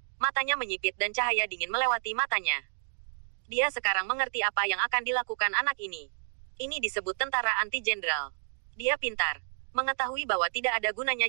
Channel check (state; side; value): silent; left; 58 dB below the other